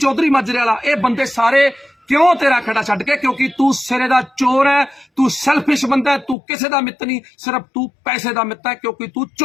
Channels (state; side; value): drops out; right; at 6.4 s